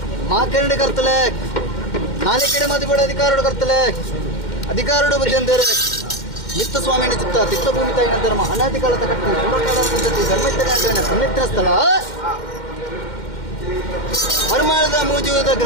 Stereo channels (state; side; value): late; right; 2.1 ms